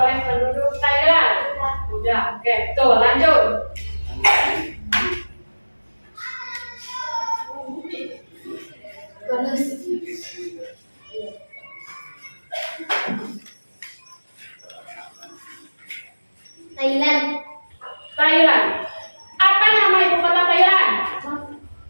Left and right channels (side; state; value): both; inverted; correlation -1.00